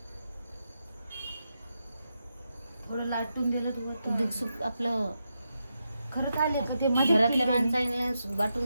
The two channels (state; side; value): inverted; both; correlation -0.86